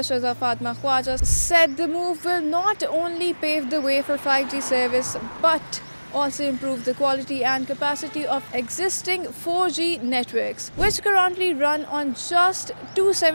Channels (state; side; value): inverted; both; correlation -1.00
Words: Fatma Khwaja said the move will not only pave the way for 5G service but also improve the quality and capacity of existing 4G networks, which currently run on just